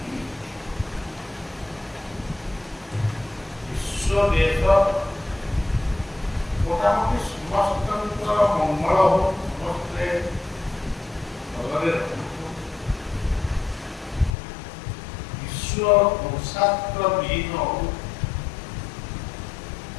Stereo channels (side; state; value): right; drops out; at 14.4 s